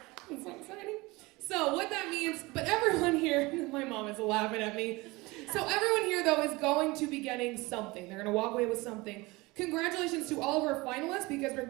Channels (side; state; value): left; quieter; 22.7 dB